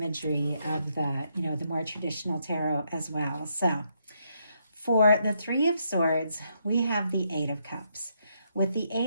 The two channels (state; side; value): inverted; both; correlation -0.76